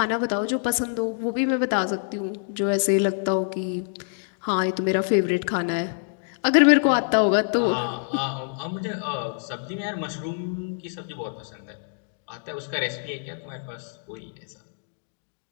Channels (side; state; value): right; silent; 61 dB below the other